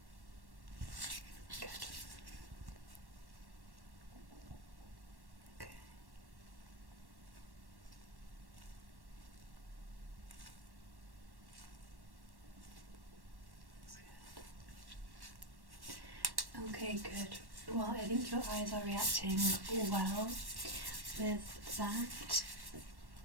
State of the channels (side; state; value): left; late; 1.1 ms